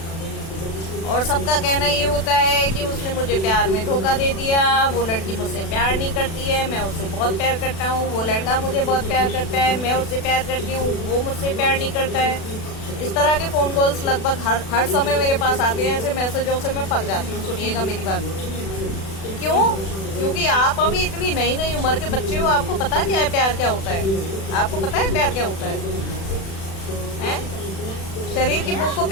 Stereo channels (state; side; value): late; right; 36 ms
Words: और सबका कहना ये होता है कि उसने मुझे प्यार में धोखा दे दिया, वो लड़की मुझसे प्यार नहीं करती है, मैं उससे बहुत प्यार करता हूँ, वो लड़का मुझे बहुत प्यार करता है, मैं उससे प्यार करती हूँ, वो मुझसे प्यार नहीं करता है। इस तरह के फोन कॉल्स लगभग हर समय मेरे पास आते हैं। ऐसे मैसेजों से मैं पक जाती हूँ। सुनिएगा मेरी बात। क्यों? क्योंकि आप अभी इतनी नई नई उम्र के बच्चे हो, आपको पता क्या है प्यार क्या होता है? आपको पता है प्यार क्या होता है? शरीर की भूख को